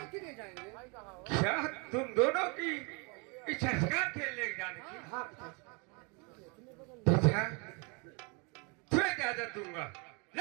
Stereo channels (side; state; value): left; quieter; 32.4 dB